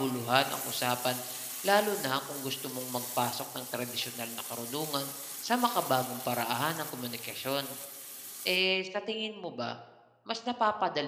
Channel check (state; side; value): identical; both; correlation 1.00